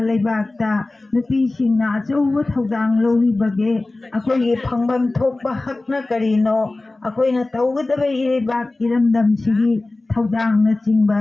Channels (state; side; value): quieter; right; 3.0 dB